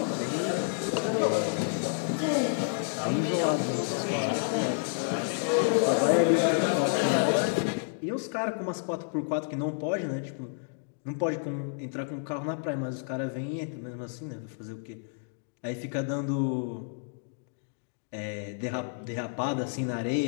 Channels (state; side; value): silent; right; digital silence